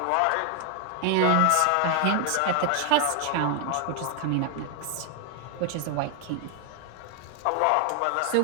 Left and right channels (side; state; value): both; different; correlation 0.00